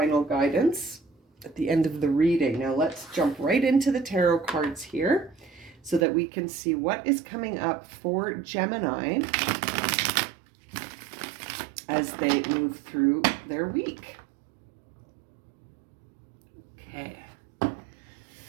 guidance at the end of the reading. Now let's jump right into the tarot cards here so that we can see what is coming up for Gemini as they move through their week. Okay,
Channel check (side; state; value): left; drops out; at 6.1 s